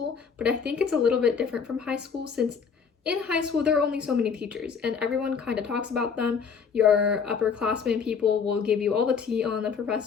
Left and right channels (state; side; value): quieter; right; 6.2 dB